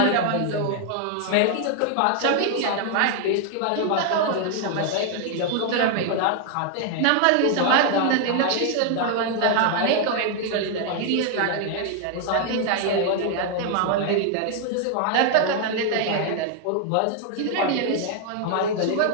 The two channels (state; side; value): different; both; correlation 0.00